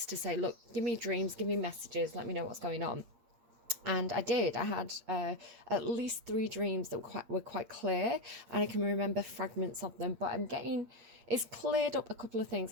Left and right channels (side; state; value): left; late; 8.7 ms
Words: to say, look, give me dreams, give me messages, let me know what's going on. And I did. I had at least 3 dreams that were quite clear, and I can remember fragments of them. But it's cleared up a couple of